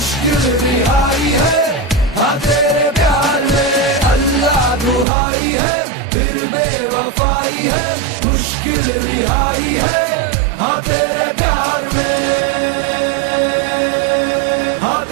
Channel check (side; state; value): left; drops out; at 5.1 s